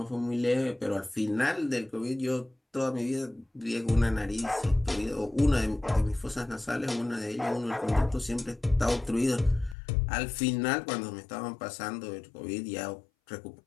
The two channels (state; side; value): drops out; right; at 9.8 s